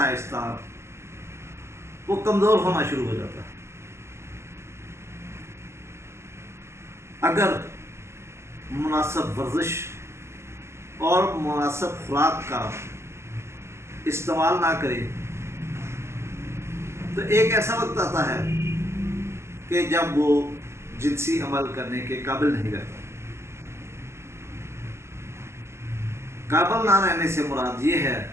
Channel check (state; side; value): late; left; 0.13 ms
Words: وہ کمزور ہونا شروع ہو جاتا ہے۔ اگر مناسب ورزش اور مناسب خوراک کا استعمال نہ کرے تو ایک ایسا وقت آتا ہے کہ جب وہ جنسی عمل کرنے کے قابل نہیں رہتا۔ قابل نہ رہنے سے مراد یہ ہے